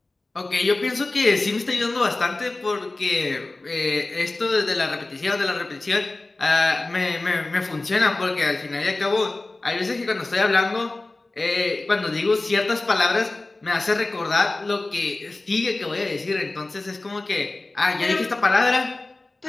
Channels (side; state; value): right; quieter; 3.1 dB